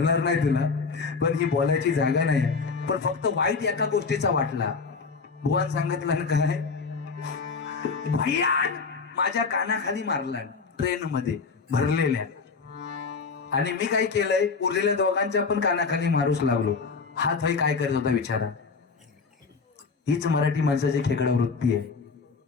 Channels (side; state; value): right; quieter; 4.8 dB